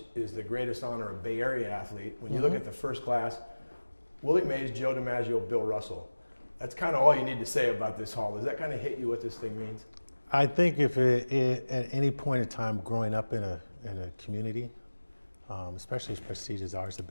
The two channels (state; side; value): inverted; both; correlation -1.00